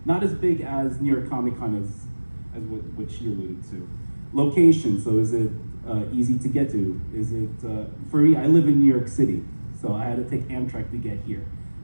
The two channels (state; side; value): inverted; both; correlation -1.00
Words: not as big as New York Comic Con as what she alluded to. Location, so is it easy to get to? Is it, for me, I live in New York City, so I had to take Amtrak to get here.